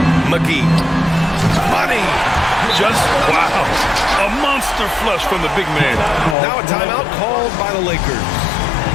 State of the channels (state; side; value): drops out; right; at 6.4 s